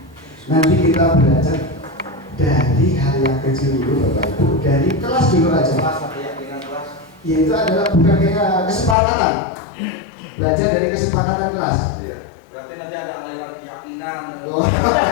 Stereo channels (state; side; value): drops out; right; at 9.0 s